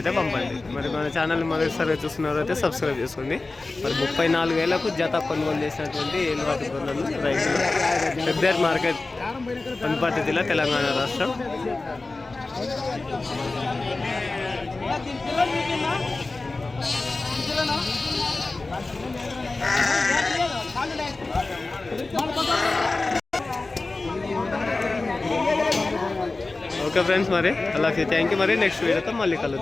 పంపండి. మరి మన ఛానల్ని మొదటిసారి చూస్తున్నారు అయితే సబ్స్క్రైబ్ చేసుకోండి. మరి 34,000కు జత కొనుగోలు చేసినటువంటి ఏలువాటి గొర్రెలు రైతులు ఫిబ్రవరి మార్కెట్, వనపర్తి జిల్లా, తెలంగాణ రాష్ట్రం. ఓకే ఫ్రెండ్స్, మరి అలాగే థ్యాంక్ యూ. మరి నెక్స్ట్ వీడియోతో మళ్ళీ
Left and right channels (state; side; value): quieter; right; 3.4 dB